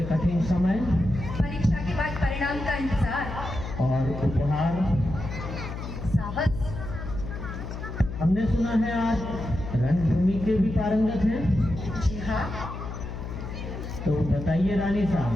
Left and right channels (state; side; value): noise; left; hum, 8 dB below the sound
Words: कठिन समय? परीक्षा के बाद परिणाम का इंतजार। और उपहार? साहस। हमने सुना है आज रणभूमि के भी पारंगत हैं। जी हाँ। तो बताइए रानी साहब,